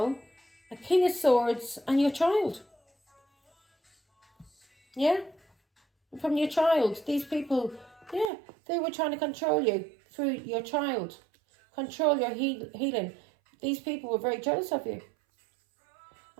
a King of Swords, and your child. Yeah? From your child. These people, yeah, they were trying to control you through your child. Control your healing. These people were very jealous of you.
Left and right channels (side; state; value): left; drops out; at 8.3 s